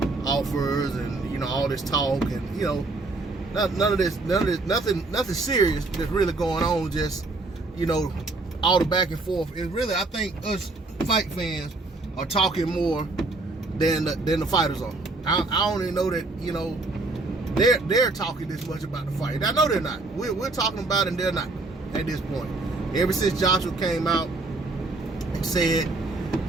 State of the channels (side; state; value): left; quieter; 3.2 dB